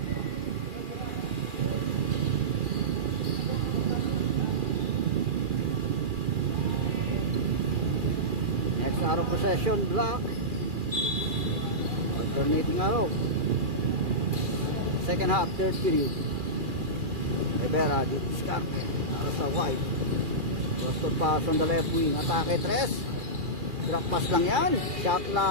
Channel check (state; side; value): late; left; 2.4 ms